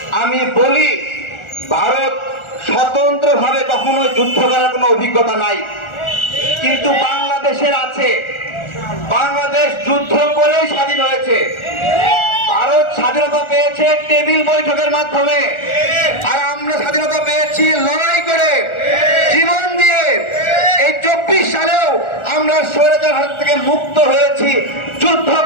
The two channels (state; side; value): late; right; 1.4 ms